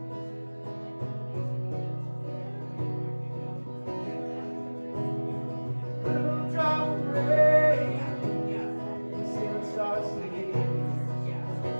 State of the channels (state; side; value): inverted; both; correlation -1.00